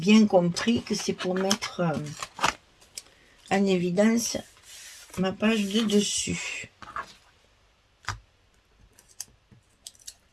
compris que c'est pour mettre en évidence ma page de dessus.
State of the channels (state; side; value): identical; both; correlation 1.00